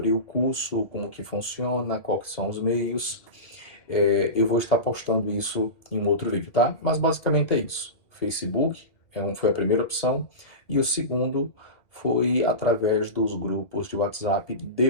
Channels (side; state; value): right; late; 2.1 ms